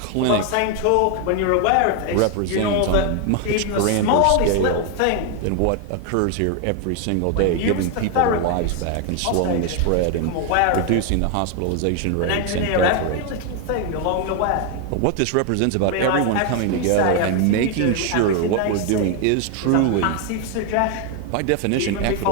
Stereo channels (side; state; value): both; different; correlation 0.01